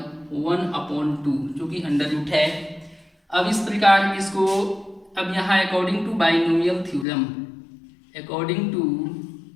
1/2 जो कि अंडर रूट है। अब इस प्रकार इसको अब यहाँ अकॉर्डिंग टू बाइनोमियल थ्योरम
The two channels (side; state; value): right; drops out; at 7.1 s